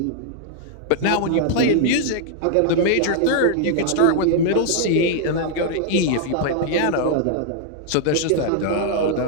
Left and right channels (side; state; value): both; different; correlation -0.01